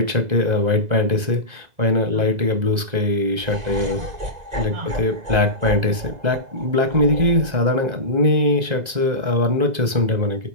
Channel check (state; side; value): late; left; 2.0 ms